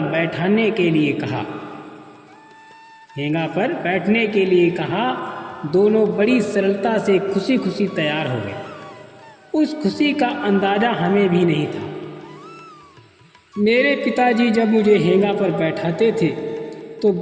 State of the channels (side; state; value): both; identical; correlation 1.00